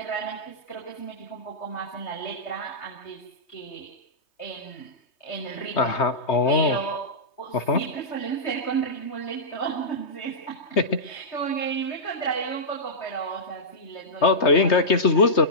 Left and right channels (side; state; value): right; late; 3.2 ms